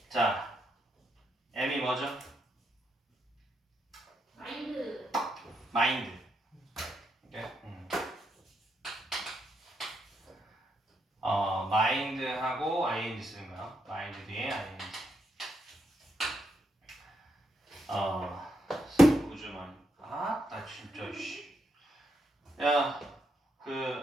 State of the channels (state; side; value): normal; both; correlation 0.80